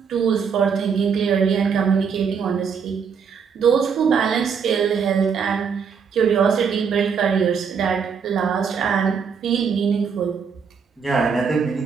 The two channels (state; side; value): quieter; left; 6.4 dB